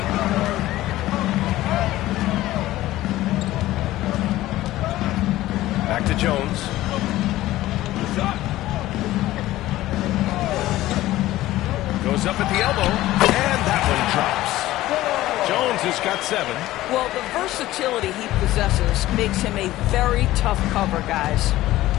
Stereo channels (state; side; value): quieter; right; 15.9 dB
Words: Back to Jones. Goes up at the elbow, and that one drops. Jones has got 7. Well, the versatility he possesses makes him a very tough cover, guys.